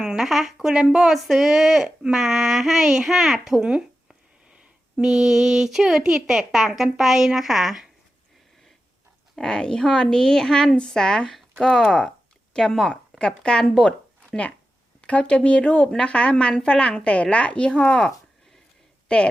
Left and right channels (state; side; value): normal; both; correlation 0.91